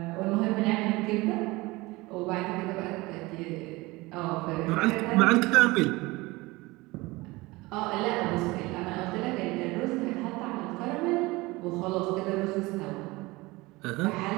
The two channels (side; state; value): left; quieter; 21.9 dB